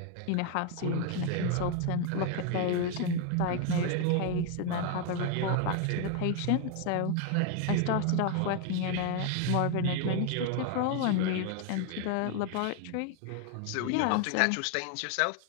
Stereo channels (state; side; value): different; both; correlation 0.01